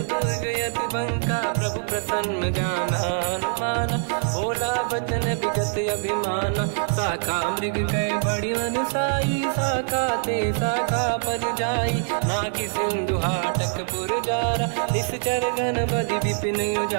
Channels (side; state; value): left; silent; digital silence